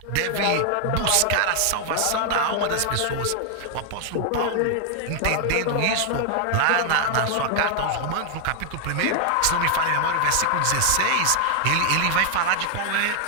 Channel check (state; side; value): different; both; correlation 0.00